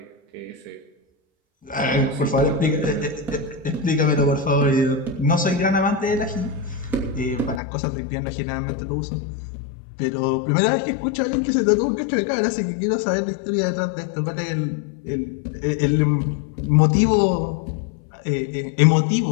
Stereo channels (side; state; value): right; drops out; at 7.6 s